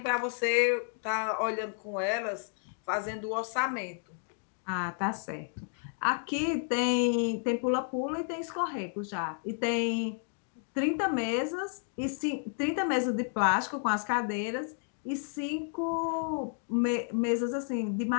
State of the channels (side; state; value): right; silent; 57 dB below the other